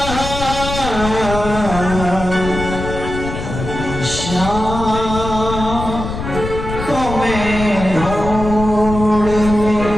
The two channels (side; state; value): left; noise; rumble, 7 dB below the sound